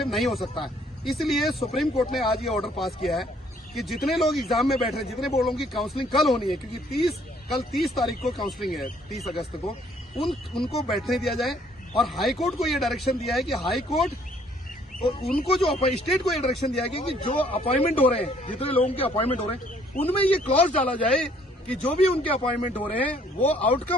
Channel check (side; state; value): both; normal; correlation 0.63